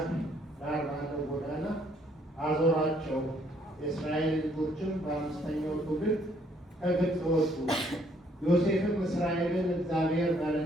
ዳር ባለው ጎዳና አዞራቸው። የእስራኤል ልጆችም በአምስተኛው ትውልድ ከግብፅ ወጡ። ዮሴፍም እስራኤልን እግዚአብሔር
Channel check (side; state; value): both; normal; correlation 0.66